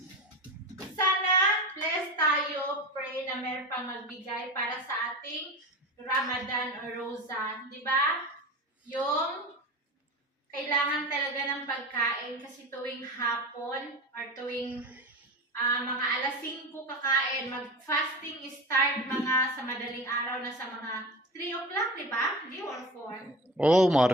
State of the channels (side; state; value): both; normal; correlation 0.30